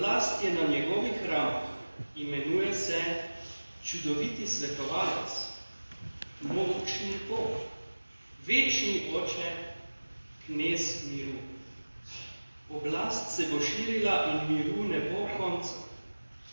je na njegovih ramah, imenuje se čudoviti svetovalec, mogočni Bog, večni Oče, knez miru. Oblast se bo širila in miru ne bo konca.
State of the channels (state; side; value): inverted; both; correlation -1.00